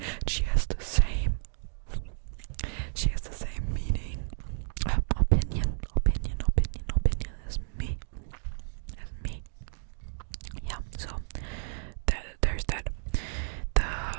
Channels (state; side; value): silent; left; digital silence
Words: She has the same meaning, opinion as me. Yeah, so there's that.